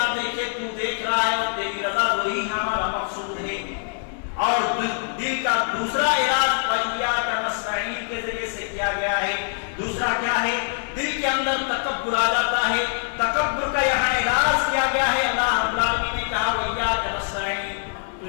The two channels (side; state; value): right; silent; 63 dB below the other